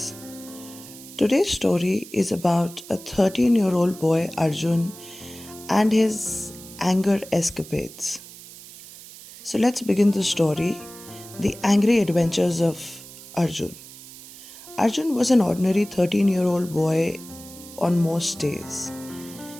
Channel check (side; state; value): right; noise; hiss, 17 dB below the sound